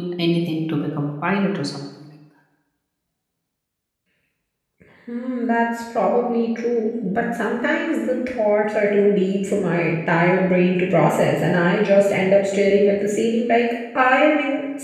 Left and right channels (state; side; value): identical; both; correlation 1.00